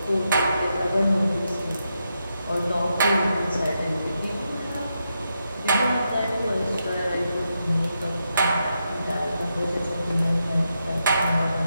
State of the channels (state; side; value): inverted; both; correlation -0.84